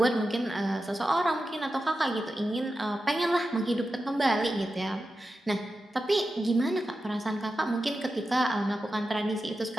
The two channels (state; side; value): normal; both; correlation 0.91